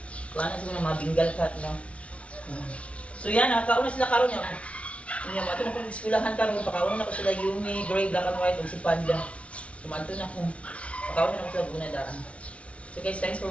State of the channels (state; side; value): late; right; 0.062 ms